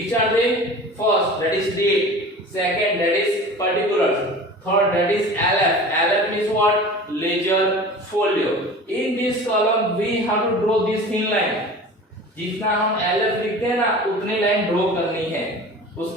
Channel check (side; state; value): both; normal; correlation 0.38